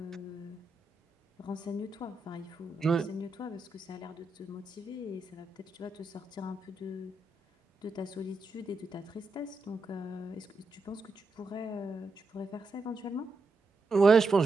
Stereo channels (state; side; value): quieter; left; 3.1 dB